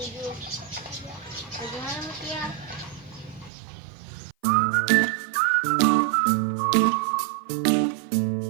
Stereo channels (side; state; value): left; drops out; at 3.5 s